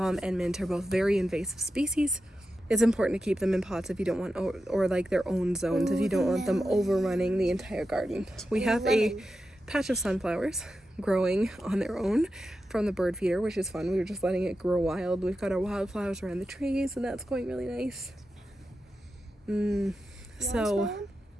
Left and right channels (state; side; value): normal; both; correlation 0.90